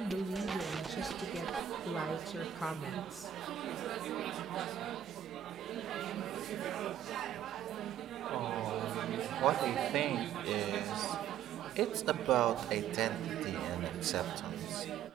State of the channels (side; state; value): left; quieter; 10.1 dB